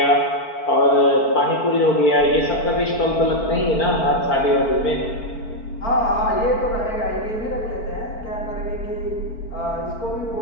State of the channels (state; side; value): late; right; 4.5 ms